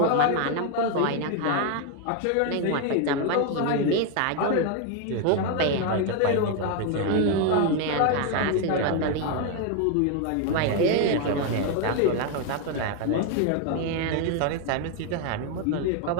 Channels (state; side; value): different; both; correlation 0.01